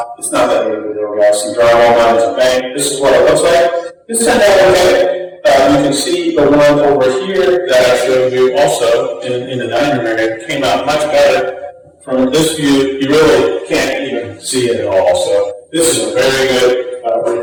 It's not that big of a deal, guys. Some drywall lines and paint. This is what it looks like. This turned out okay. You can see the one over here that I showed you also in the dining room area came out much better. From this view, you really can't even see it at all. So this is a very good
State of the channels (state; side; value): identical; both; correlation 1.00